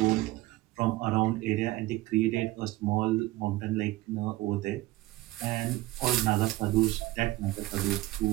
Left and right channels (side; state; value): left; quieter; 18.1 dB